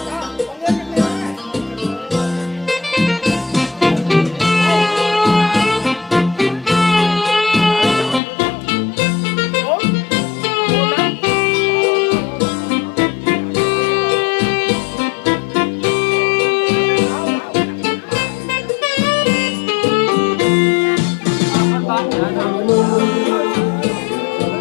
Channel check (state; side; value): drops out; right; at 8.2 s